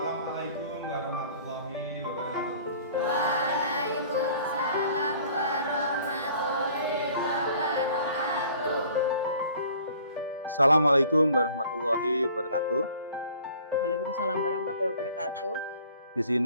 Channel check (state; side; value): inverted; both; correlation -0.52